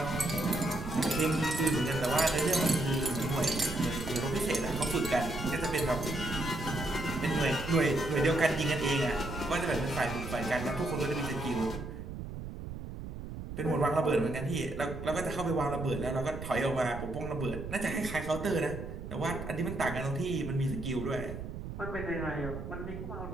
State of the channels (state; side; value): noise; right; rumble, 8 dB below the sound